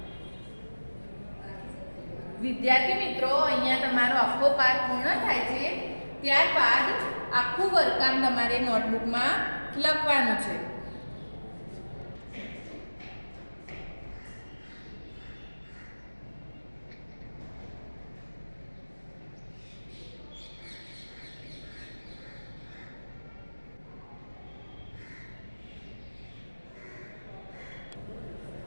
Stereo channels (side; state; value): both; inverted; correlation -1.00